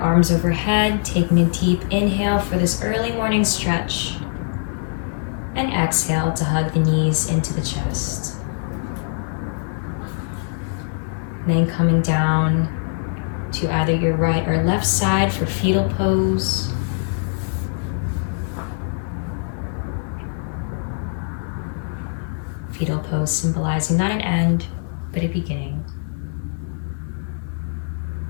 overhead, taking a deep inhale for this early morning stretch. And exhale to hug the knees into the chest. Then coming down to either your right or left side for fetal pose. Fetal pose symbolizing not an end, but a beginning.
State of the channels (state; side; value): silent; right; digital silence